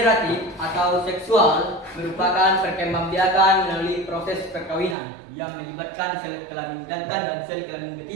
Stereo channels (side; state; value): left; drops out; at 5.0 s